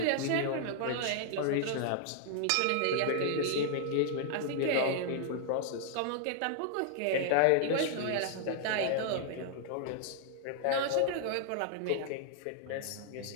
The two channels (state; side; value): different; both; correlation 0.00